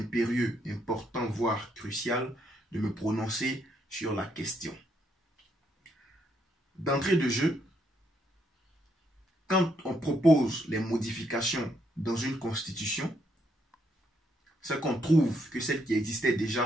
important, voire crucial de me prononcer sur la question. D'entrée de jeu, quand on propose les modifications dans une constitution, c'est qu'on trouve que celle qui existait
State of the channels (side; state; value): both; normal; correlation 0.74